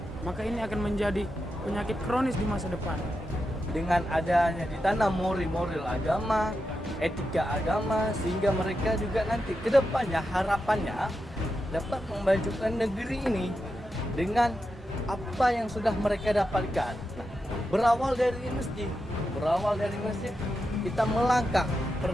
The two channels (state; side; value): normal; both; correlation 0.88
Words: maka ini akan menjadi penyakit kronis di masa depan. Dengan adanya ditanam moral agama, etika agama, sehingga mereka juga nanti ke depannya harapannya dapat memajukan negeri ini dengan apa yang sudah mereka dapatkan. Berawal dari masjid, kita melangkah